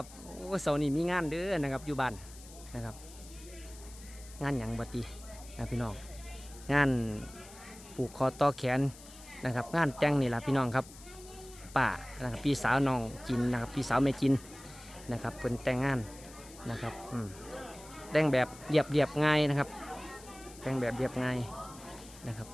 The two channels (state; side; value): noise; left; hiss, 19 dB below the sound